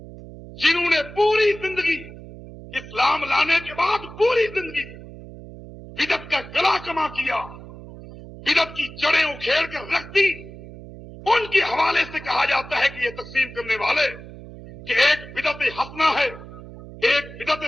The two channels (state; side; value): noise; right; hum, 15 dB below the sound